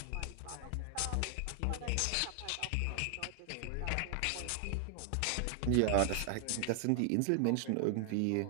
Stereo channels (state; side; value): different; both; correlation 0.00